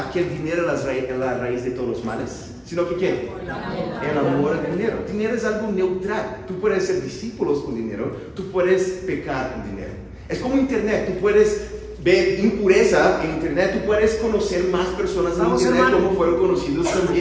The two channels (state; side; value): identical; both; correlation 1.00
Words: que el dinero es la raíz de todos los males, sino que ¿qué? El amor al dinero. Dinero es algo neutral. Tú puedes ser discípulos con dinero, tú puedes pecar con dinero. Es como internet, tú puedes ver impureza en internet, tú puedes conocer más personas en internet como fueron conocidos